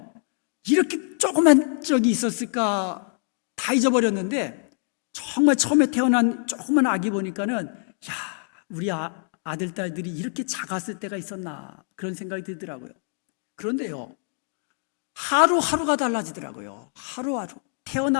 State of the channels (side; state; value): right; silent; 56 dB below the other